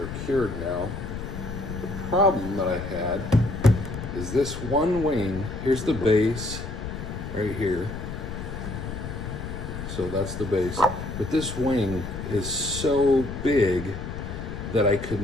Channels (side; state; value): left; noise; rumble, 7 dB below the sound